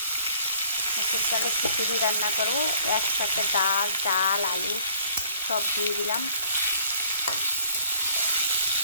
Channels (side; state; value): both; inverted; correlation -0.60